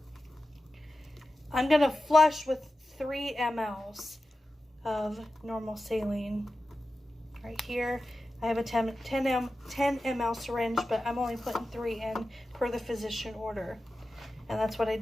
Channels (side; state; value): both; normal; correlation 0.93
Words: I'm going to flush with 3 mLs of normal saline. Right here, I have a 10 ml syringe, but I'm only putting 3 in per the physician order. And that's what I